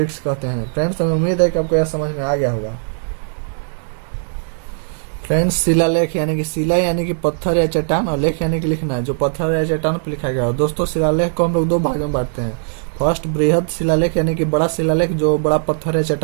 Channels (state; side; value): silent; left; digital silence